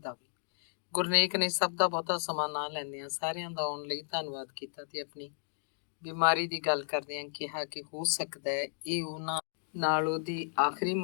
ਵੀ। ਗੁਰਨੇਕ ਨੇ ਸਭ ਦਾ ਬਹੁਤਾ ਸਮਾਂ ਨਾ ਲੈਂਦਿਆਂ ਸਾਰਿਆਂ ਦਾ ਆਉਣ ਲਈ ਧੰਨਵਾਦ ਕੀਤਾ ਤੇ ਆਪਣੀ ਬਿਮਾਰੀ ਦੀ ਗੱਲ ਕਰਦਿਆਂ ਕਿਹਾ ਕਿ ਹੋ ਸਕਦਾ ਹੈ ਇਹ ਉਹਨਾਂ ਨਾਲ ਉਹਦੀ ਆਖਰੀ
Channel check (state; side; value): silent; right; digital silence